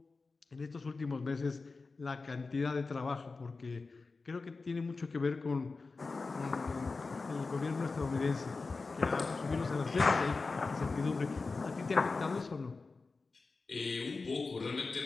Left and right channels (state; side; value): quieter; right; 4.0 dB